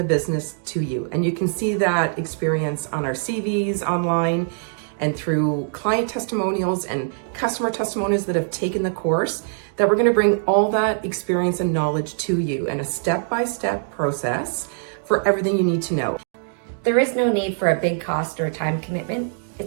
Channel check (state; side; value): silent; left; digital silence